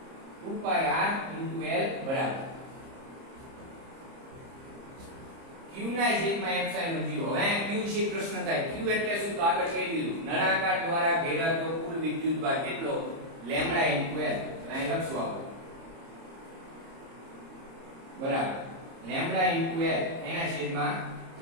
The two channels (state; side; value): late; left; 30 ms